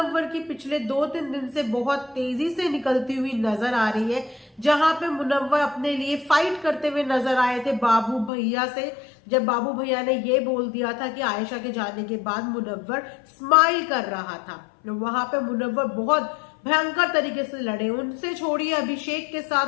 की पिछले 2-3 दिन से बहुत तेजी से निकलती हुई नजर आ रही है, जहां पे मुनव्वर अपने लिए फाइट करते हुए नजर आए थे बाबू भैया से। जब बाबू भैया ने ये बोल दिया था कि आयशा के जाने के बाद मुनव्वर स्माइल कर रहा था, वहां पे मुनव्वर बहुत भयंकर तरीके से लड़े। उनसे छोड़िए, अभिषेक के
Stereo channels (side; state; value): right; drops out; at 8.3 s